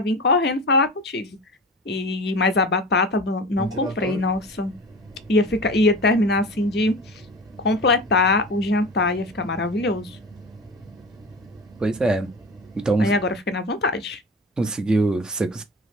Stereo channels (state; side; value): normal; both; correlation 0.32